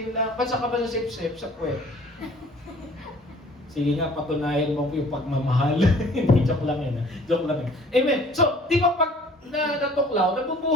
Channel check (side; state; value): both; normal; correlation 0.53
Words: lang. Ba't ka ba sa sip-sip? Sa puwet. Sige nga, patunayan mo yung pagmamahal. Hindi, joke lang Joke lang Amen. So, di ba pag natuklaw,